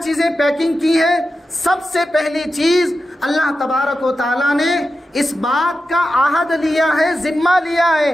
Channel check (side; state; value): both; normal; correlation 0.91